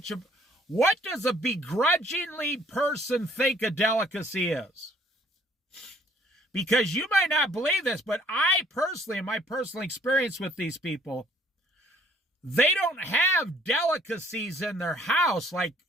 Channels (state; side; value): normal; both; correlation 0.61